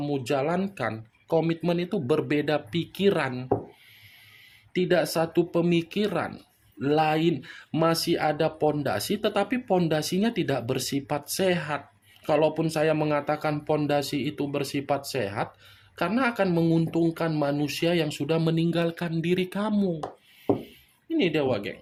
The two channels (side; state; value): both; identical; correlation 1.00